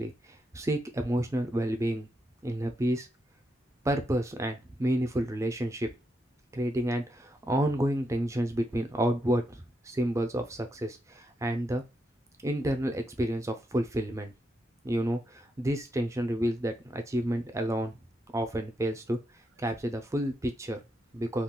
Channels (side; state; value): both; normal; correlation 0.82